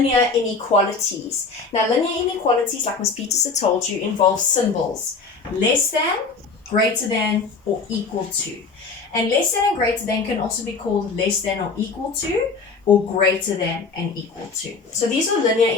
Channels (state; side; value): quieter; right; 4.5 dB